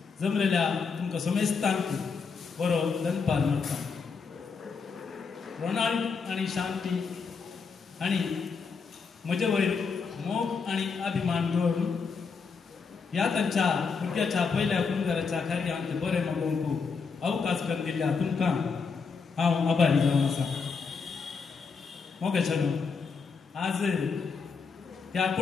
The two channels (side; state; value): right; quieter; 5.3 dB